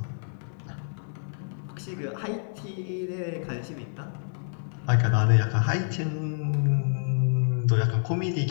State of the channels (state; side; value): silent; right; digital silence